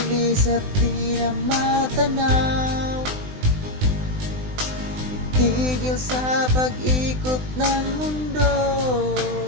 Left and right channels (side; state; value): left; late; 20 ms